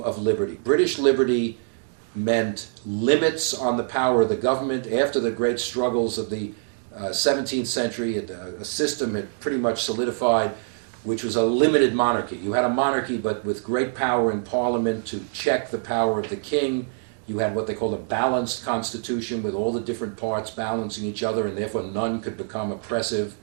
of liberty. British liberty meant limits on the power of the government. After the great struggles of the 17th century, a system had pretty much solidified, which was a limited monarchy. You had a monarchy, but with great power in Parliament to check the power of the king. You had what they called a balanced constitution with all the different parts balancing each other, and therefore none could become oppressive.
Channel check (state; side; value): silent; left; digital silence